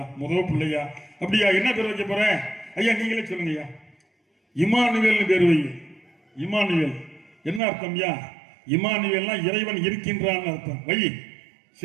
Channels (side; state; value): left; drops out; at 7.6 s